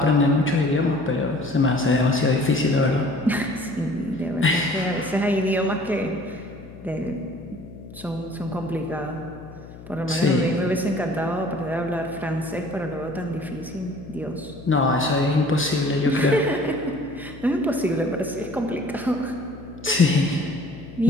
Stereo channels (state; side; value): noise; left; hum, 17 dB below the sound